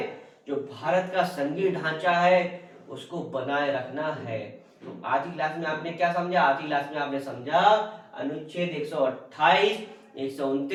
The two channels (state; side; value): identical; both; correlation 1.00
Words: जो भारत का संघीय ढांचा है उसको बनाए रखना है। तो आज की क्लास में आपने क्या समझा? आज की क्लास में आपने समझा अनुच्छेद 128,